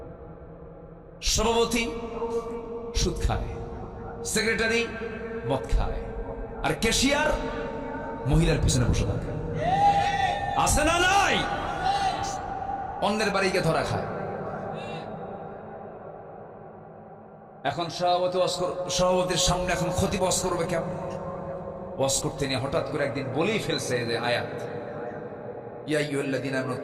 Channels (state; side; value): identical; both; correlation 1.00